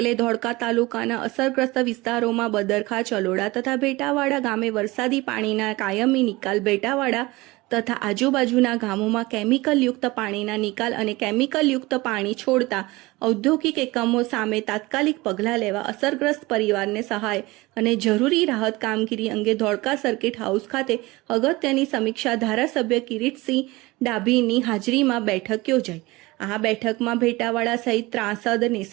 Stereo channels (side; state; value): left; quieter; 21.6 dB